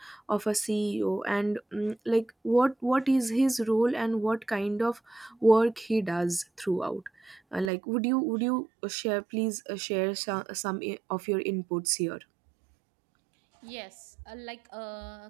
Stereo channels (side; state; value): left; drops out; at 7.7 s